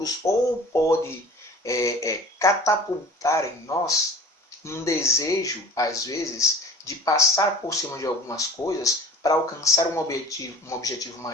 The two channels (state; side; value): normal; both; correlation 0.42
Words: ou pode catapultar em nós um desejo, às vezes, de passar por cima de algumas coisas para alcançar um objetivo